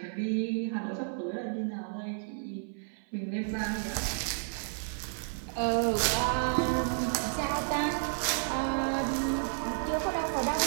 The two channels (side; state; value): left; silent; 57 dB below the other